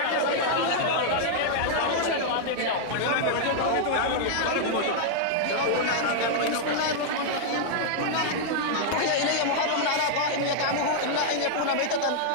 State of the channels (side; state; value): both; different; correlation -0.01